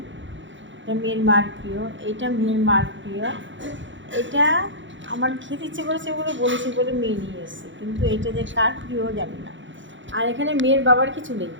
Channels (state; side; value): late; left; 0.55 ms